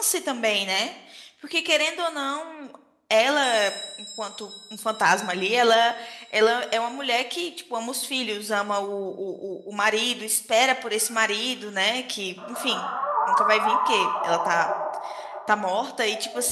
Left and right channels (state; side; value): identical; both; correlation 1.00